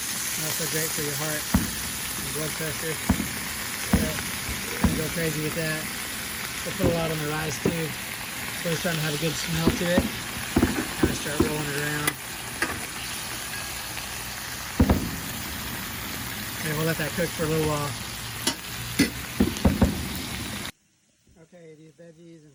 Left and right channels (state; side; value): identical; both; correlation 1.00